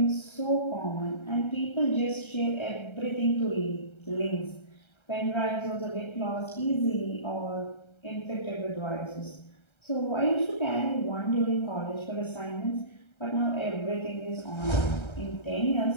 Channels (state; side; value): late; right; 1.3 ms